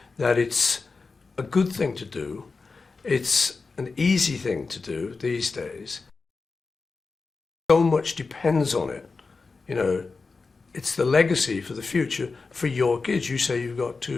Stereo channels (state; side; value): quieter; right; 4.3 dB